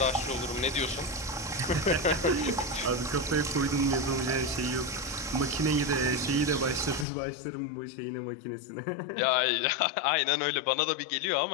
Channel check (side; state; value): right; drops out; at 7.1 s